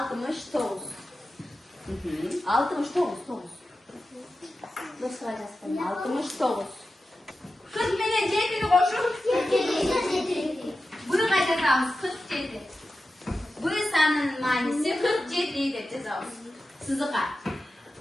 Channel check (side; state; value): both; normal; correlation 0.93